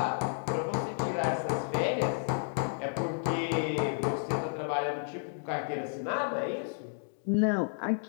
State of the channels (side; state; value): right; silent; digital silence